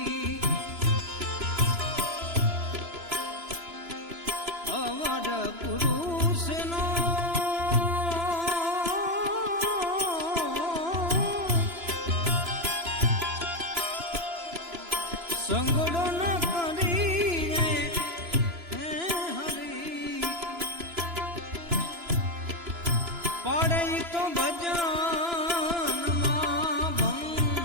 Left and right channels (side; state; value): left; late; 2.9 ms